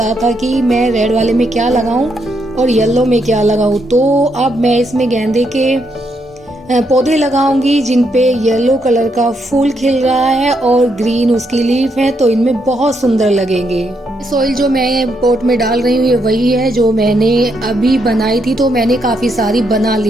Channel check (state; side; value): normal; both; correlation 0.78